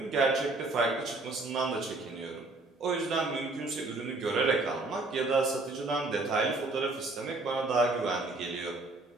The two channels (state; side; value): quieter; left; 3.2 dB